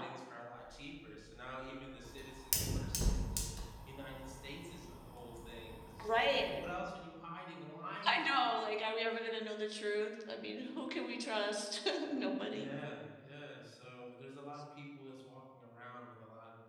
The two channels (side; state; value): both; identical; correlation 1.00